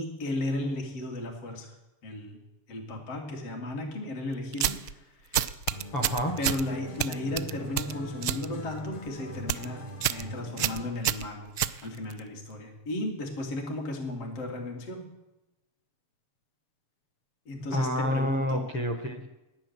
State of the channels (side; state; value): right; late; 6.6 ms